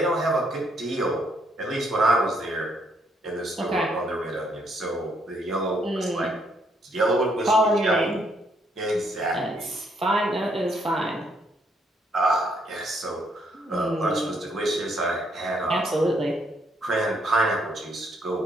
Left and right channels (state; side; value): normal; both; correlation 0.71